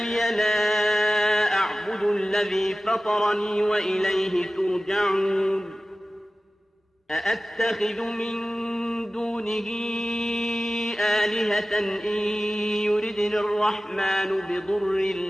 لا أعبد الذي فطرني وإليه ترجعون. أأتخذ من دونه آلهة إن يردني الرحمن بضر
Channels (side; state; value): both; normal; correlation 0.96